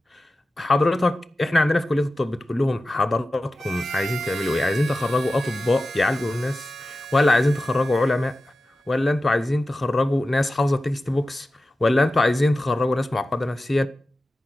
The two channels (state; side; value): normal; both; correlation 0.94